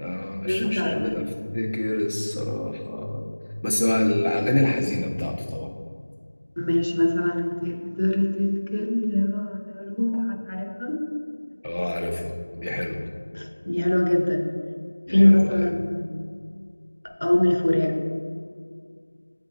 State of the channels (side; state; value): both; inverted; correlation -1.00